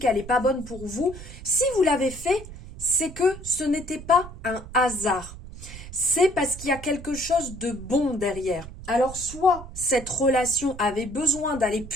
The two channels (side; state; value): right; noise; rumble, 14 dB below the sound